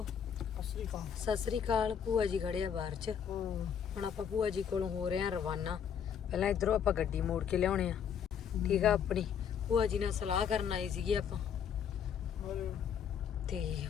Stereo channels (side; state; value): right; quieter; 7.9 dB